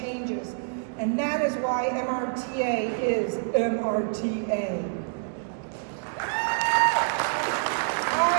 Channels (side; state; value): left; silent; digital silence